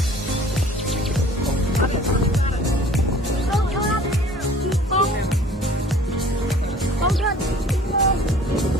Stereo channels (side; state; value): both; normal; correlation 0.50